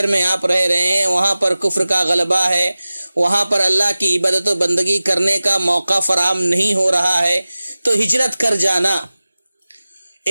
میں آپ رہ رہے ہیں، وہاں پر کفر کا غلبہ ہے، وہاں پر اللہ کی عبادت و بندگی کرنے کا موقع فراہم نہیں ہو رہا ہے، تو ہجرت کر جانا،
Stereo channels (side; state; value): both; inverted; correlation -0.96